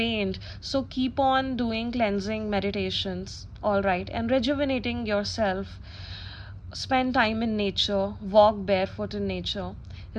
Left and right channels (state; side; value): identical; both; correlation 1.00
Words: so keep on doing cleansing meditations, all right, and rejuvenating yourself. Spend time in nature, walk barefoot in nature,